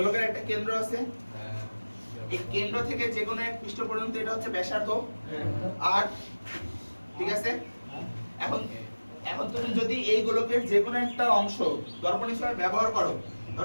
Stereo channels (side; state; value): both; inverted; correlation -1.00